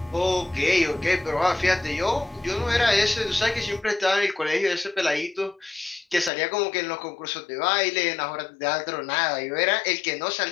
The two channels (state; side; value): drops out; right; at 6.3 s